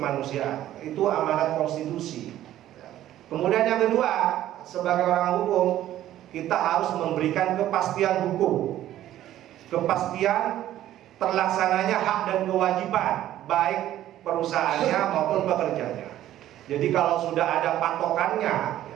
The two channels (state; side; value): quieter; left; 13.0 dB